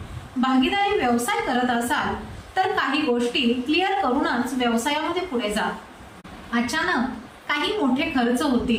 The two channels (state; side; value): identical; both; correlation 1.00